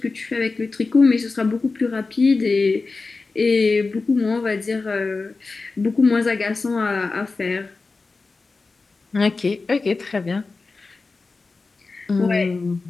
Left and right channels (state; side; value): quieter; right; 3.9 dB